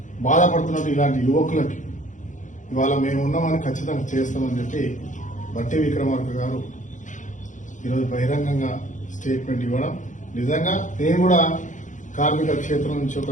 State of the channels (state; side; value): late; right; 0.36 ms